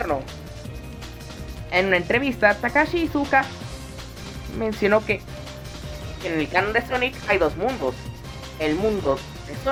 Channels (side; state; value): both; identical; correlation 1.00